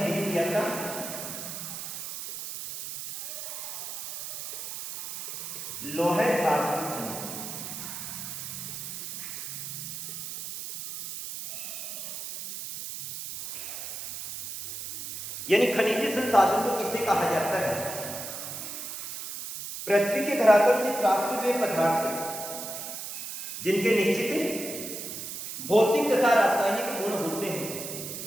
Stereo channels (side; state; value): right; noise; hiss, 7 dB below the sound